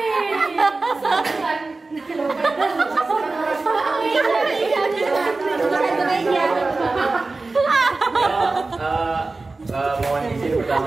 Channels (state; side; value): quieter; left; 3.5 dB